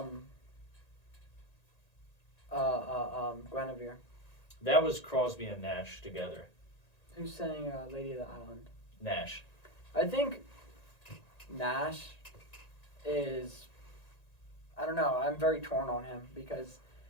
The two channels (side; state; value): right; late; 1.9 ms